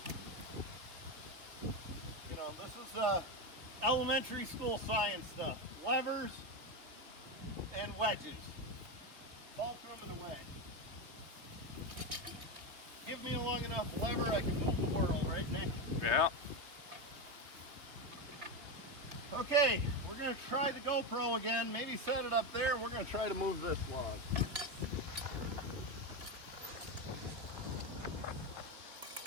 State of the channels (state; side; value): late; left; 3.3 ms